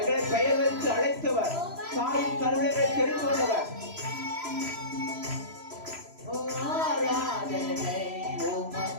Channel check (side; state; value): left; late; 3.0 ms